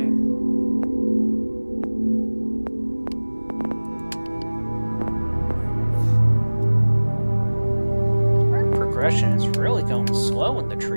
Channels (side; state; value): both; inverted; correlation -1.00